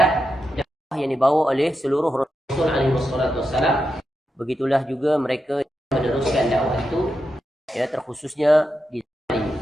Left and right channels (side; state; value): both; normal; correlation 0.87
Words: dakwah yang dibawa oleh seluruh Rasul alaihi wassalam. Begitulah juga mereka meneruskan dakwah itu, ya, terkhususnya di zaman ini.